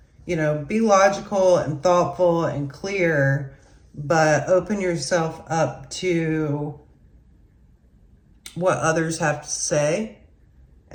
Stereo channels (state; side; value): identical; both; correlation 1.00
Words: you know, be logical and thoughtful and clear, but open yourself up to what others have to say